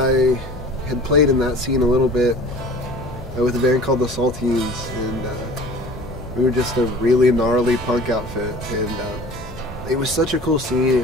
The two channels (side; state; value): both; normal; correlation 0.43